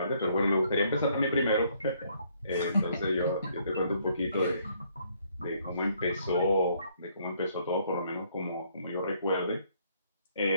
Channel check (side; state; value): both; inverted; correlation -0.67